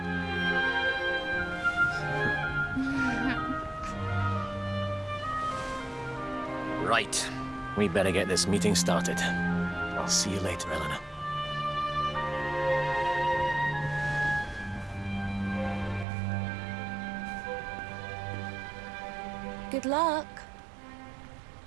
Right. We better get this meeting started. I'll see you later, Eleanor. Good luck,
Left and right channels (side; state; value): left; drops out; at 16.1 s